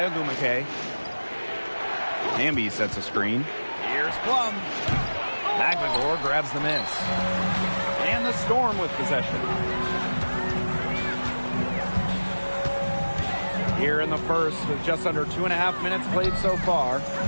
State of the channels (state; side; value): inverted; both; correlation -1.00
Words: Ogumake. Hamby sets a screen. Here's Plum. Agbagor grabs the miss. And the Storm with possession. Here in the first with just under 2.5 minutes played so far.